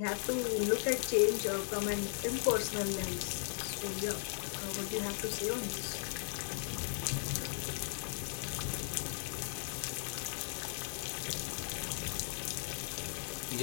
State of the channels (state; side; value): silent; right; digital silence